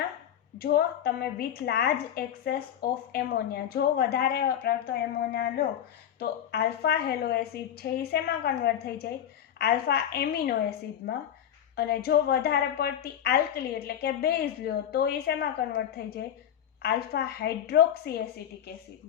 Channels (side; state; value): right; quieter; 9.9 dB